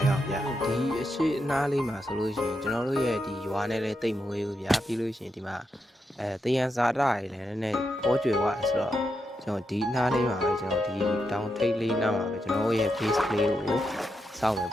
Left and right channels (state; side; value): normal; both; correlation 0.84